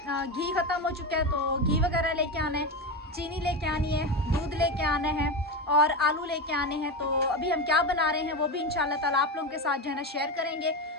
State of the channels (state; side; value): normal; both; correlation 0.17